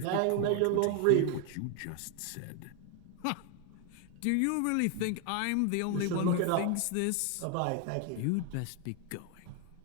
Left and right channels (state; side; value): different; both; correlation 0.01